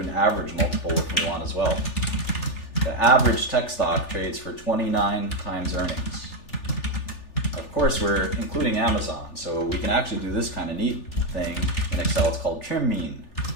an average multiple if we want as well. The average tech stock trades for 29 times earnings. Of course, we're including Amazon, so we can actually do this kind of neat thing in Excel. It's called trim mean.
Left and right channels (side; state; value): right; late; 3.4 ms